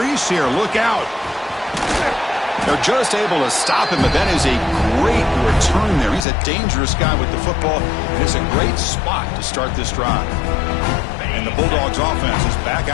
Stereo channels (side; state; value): right; drops out; at 6.2 s